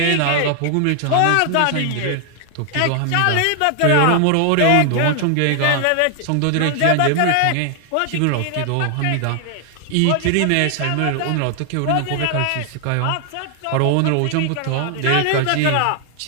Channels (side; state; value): both; different; correlation 0.00